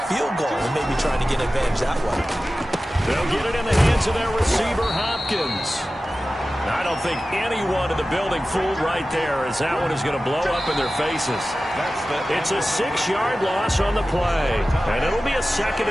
field goal and maybe trying to get an advantage that way. They'll get it in the hands of their receiver, Hopkins. I don't think anyone in the building fooled right there, as that one is going to blow up in their faces. It's a 6-yard loss on the play, and it'll be a 2nd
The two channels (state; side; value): normal; both; correlation 0.95